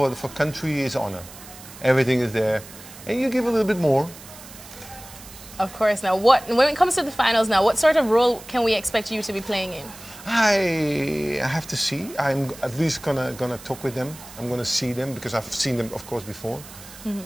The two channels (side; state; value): right; noise; hiss, 17 dB below the sound